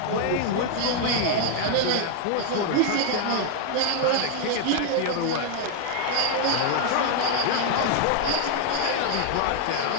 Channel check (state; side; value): different; both; correlation 0.00